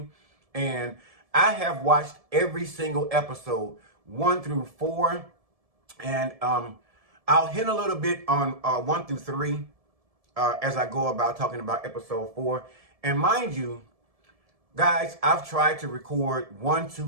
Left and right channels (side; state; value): left; late; 1.7 ms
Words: And I have watched every single episode, 1 through 4, and I'll hint a little bit on 1 through 3 as I go about talking about episode 4. And mind you, guys, I've tried to record 1,